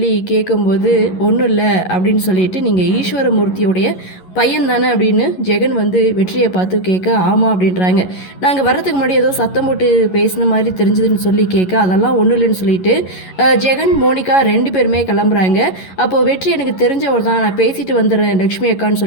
கேட்கும்போது ஒன்றும் இல்லை அப்படின்னு சொல்லிட்டு நீங்கள் ஈஸ்வரமூர்த்தியோடைய பையன் தானே அப்படின்னு ஜெகன் வந்து வெற்றியை பார்த்து கேட்க ஆமாம் அப்படின்றாங்க. நாங்கள் வர்றதுக்கு முன்னாடி ஏதோ சத்தம் போட்டு பேசின மாதிரி தெரிஞ்சதுன்னு சொல்லி கேட்க அதெல்லாம் ஒன்றும் இல்லைன்னு சொல்லிட்டு ஜெகன் மோனிகா ரெண்டு பேருமே கிளம்புறாங்க. அப்போது வெற்றி எனக்கு தெரிஞ்சவர் தான், நான் பேசிட்டு வந்துடுறேன் லக்ஷ்மி அக்கான்னு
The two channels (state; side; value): late; right; 11 ms